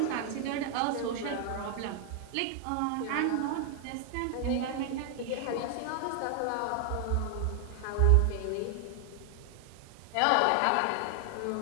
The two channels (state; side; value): different; both; correlation 0.00